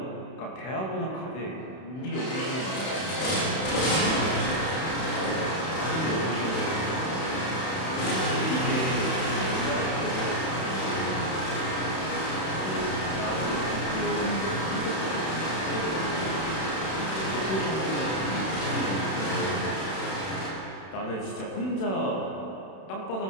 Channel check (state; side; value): late; right; 31 ms